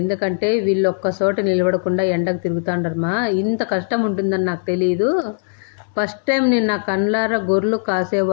ఎందుకంటే వీళ్ళు ఒక్క చోట నిలబడకుండా ఎండకు తిరుగుతాండరమ్మా. ఇంత కష్టం ఉంటుందని నాకు తెలియదు. ఫస్ట్ టైం నేను నా కళ్ళారా గొర్రెలు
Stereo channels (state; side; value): silent; right; digital silence